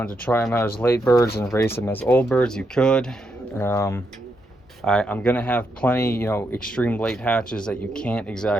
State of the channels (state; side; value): normal; both; correlation 0.81